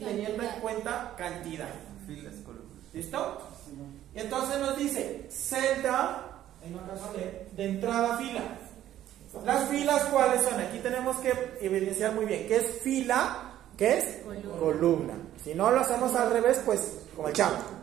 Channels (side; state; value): left; quieter; 12.3 dB